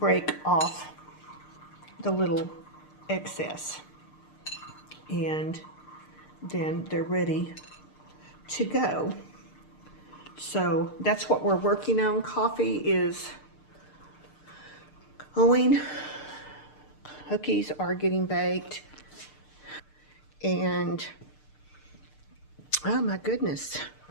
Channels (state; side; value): late; right; 6.6 ms